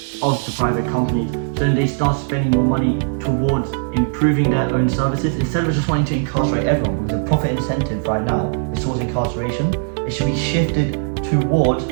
of the private companies, so then they start spending more money towards improving their own services instead of just wanting to incarcerate everyone. Because the profit incentive right now is towards incarceration. It should be shifted towards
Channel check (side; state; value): left; silent; digital silence